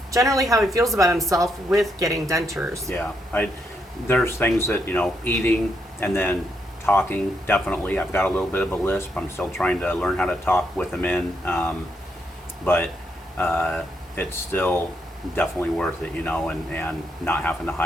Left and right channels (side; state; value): both; normal; correlation 0.78